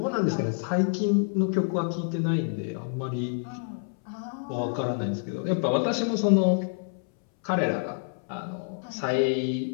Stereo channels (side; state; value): right; silent; 60 dB below the other